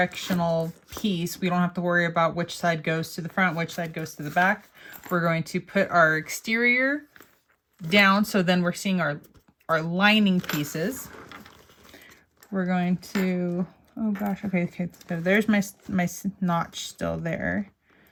piece, we don't have to worry about which side goes to the front, which side goes to the back. We're going to put our exterior down, so then we're seeing our lining pieces. We're going to, oh gosh, okay, so there's my notch still there.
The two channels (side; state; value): both; identical; correlation 1.00